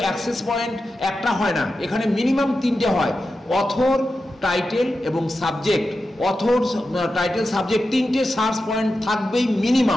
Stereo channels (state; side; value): normal; both; correlation 0.91